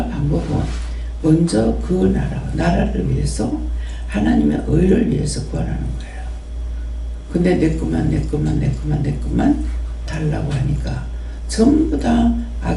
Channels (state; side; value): identical; both; correlation 1.00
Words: 방법은 먼저 그 나라를 위해서 하나님의 의를 위해서 구하라는 거예요. 근데 내 것만 달라고 하니까 전부 다